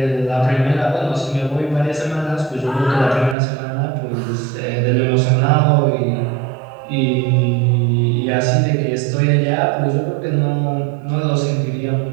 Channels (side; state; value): left; drops out; at 3.4 s